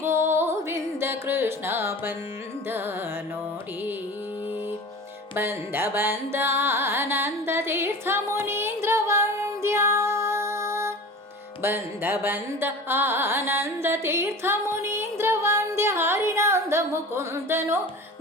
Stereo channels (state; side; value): normal; both; correlation 0.36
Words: ಗೋವಿಂದ ಕೃಷ್ಣ ಬಂದ ನೋಡಿ, ಬಂದ ಬಂದ ಆನಂದ ತೀರ್ಥ ಮುನೀಂದ್ರ ವಂದ್ಯ, ಬಂದ ಬಂದ ಆನಂದ ತೀರ್ಥ ಮುನೀಂದ್ರ ವಂದ್ಯ, ಹರಿನಂದ ಮುಕುಂದನು